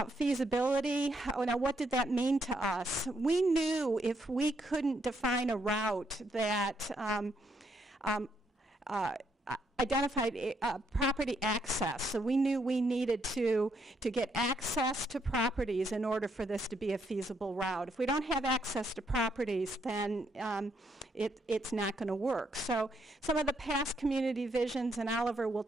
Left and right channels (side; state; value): both; normal; correlation 0.75